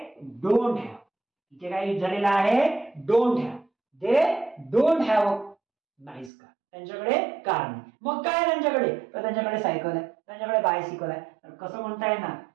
डोंट हॅव. इथे काय यूज झालेला आहे, don't have. They don't have nice car, त्यांच्याकडे कार नाही. मग काय त्यांच्याकडे, तर त्यांच्याकडे सायकल आहे, त्यांच्याकडे बायसिकल आहे. तर कसं म्हणता येणार,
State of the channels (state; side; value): drops out; left; at 6.3 s